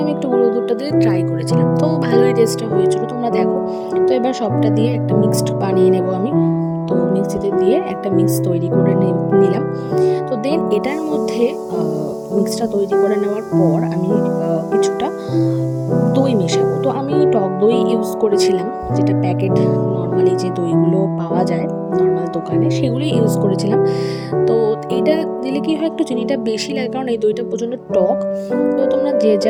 আমি একটু গুঁড়ো দুধটা দিয়ে ট্রাই করেছিলাম, তো ভালোই টেস্টটা হয়েছিল, তোমরা দেখো। তো এবার সবটা দিয়ে একটা মিক্সড বানিয়ে নেব আমি। তো মিক্সিতে দিয়ে একটা মিক্স তৈরি করে নিলাম। তো দেন এটার মধ্যে মিক্সটা তৈরি করে নেওয়ার পর আমি কিছুটা দই মেশাবো। তো আমি টক দই ইউজ করেছিলাম, যেটা প্যাকেট নর্মালি যে দইগুলো পাওয়া যায় নর্মাল দোকানে, সেগুলোই ইউজ করেছিলাম। তো এইটা দিলে কি হয়, একটু চিনিটা বেশি লাগে, কারণ এই দইটা প্রচণ্ড টক। তো তোমরা যে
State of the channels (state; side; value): identical; both; correlation 1.00